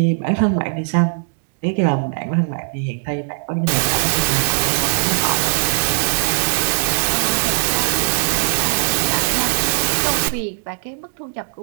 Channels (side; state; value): left; silent; digital silence